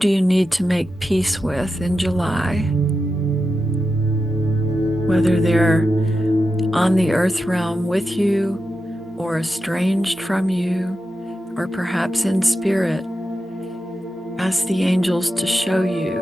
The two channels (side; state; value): both; normal; correlation 0.89